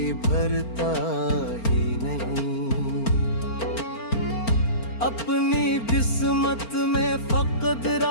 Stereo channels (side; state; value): right; late; 4.4 ms